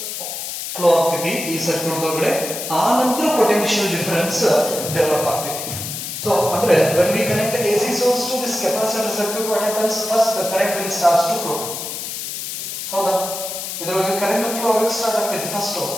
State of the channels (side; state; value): left; noise; hiss, 6 dB below the sound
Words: flow ಆಗ್ತೈತಿ ಈ circuit ಒಳಗಡೆ, ಆ ನಂತರ potential difference develop ಆಗ್ತೈತಿ. ಸೊ ಅಂದ್ರೆ when we connect the AC source to this capacitor circuit, what happens, first the current will starts to flow. ಹೌದಾ, ಇದರೊಳಗೆ ಕರೆಂಟ್ ಫ್ಲೋ ಆಗಕ್ಕೆ ಸ್ಟಾರ್ಟ್ ಆಗ್ತೈತಿ ಫಸ್ಟ್.